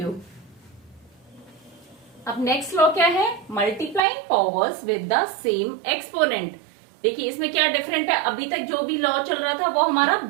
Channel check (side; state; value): left; drops out; at 4.0 s